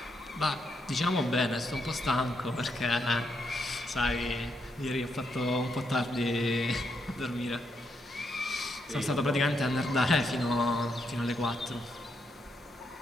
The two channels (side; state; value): both; normal; correlation 0.79